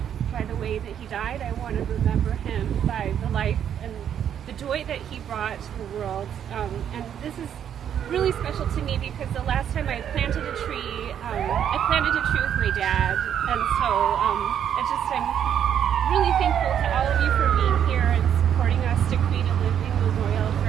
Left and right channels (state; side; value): quieter; left; 9.2 dB